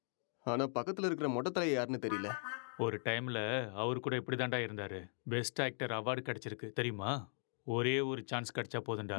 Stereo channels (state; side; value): silent; right; 52 dB below the other